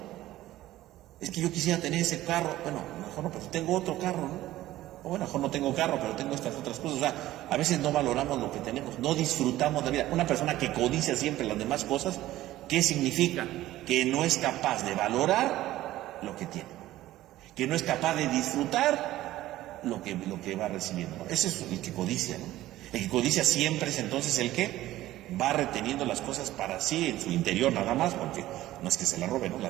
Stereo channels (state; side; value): quieter; left; 15.3 dB